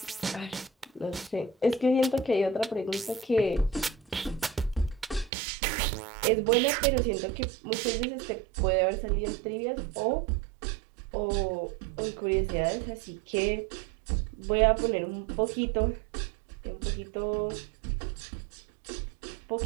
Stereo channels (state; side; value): drops out; left; at 5.3 s